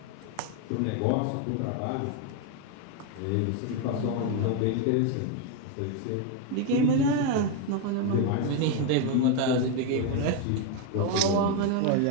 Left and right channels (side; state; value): both; different; correlation 0.01